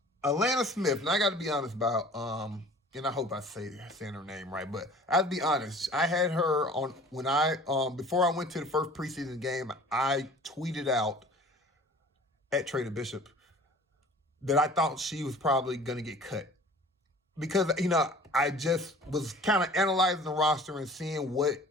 Elena Smith, and I got to be honest about, and I hope I saying her name right, but I'll be honest, I had her on when before I went to the first preseason game, I tweeted out at Trader Bishop that I thought she was probably going to get cut. Because, I just was kind of analyzing the roster and seeing what,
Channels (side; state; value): both; normal; correlation 0.46